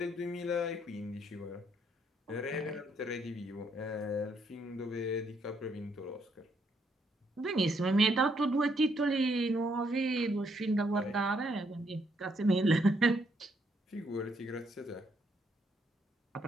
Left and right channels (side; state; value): both; normal; correlation 0.73